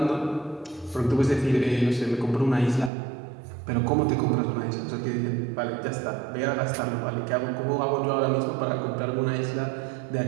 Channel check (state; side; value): drops out; left; at 2.9 s